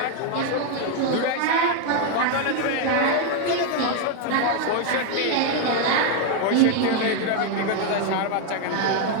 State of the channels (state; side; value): different; both; correlation 0.01